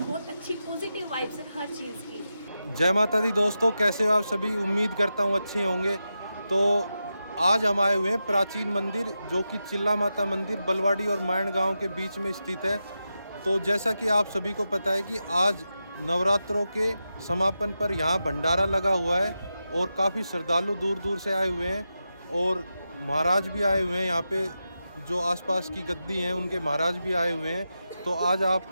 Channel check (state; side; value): inverted; both; correlation -0.90